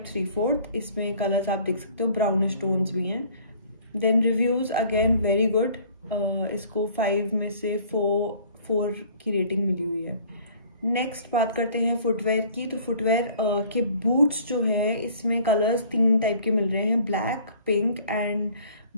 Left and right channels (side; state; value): both; inverted; correlation -0.53